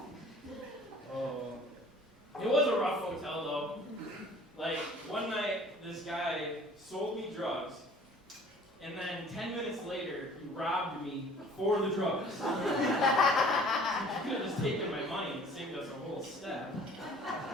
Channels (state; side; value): normal; both; correlation 0.50